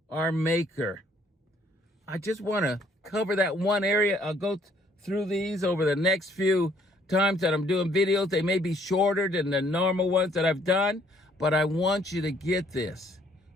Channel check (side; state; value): both; normal; correlation 0.64